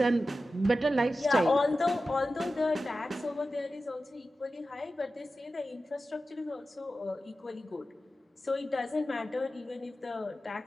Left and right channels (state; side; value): normal; both; correlation 0.93